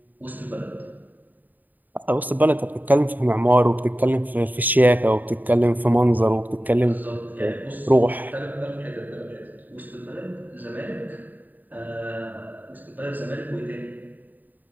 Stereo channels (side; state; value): left; late; 0.085 ms